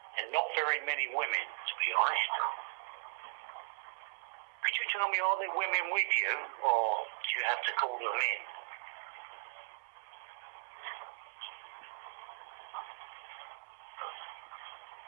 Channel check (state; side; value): silent; left; 53 dB below the other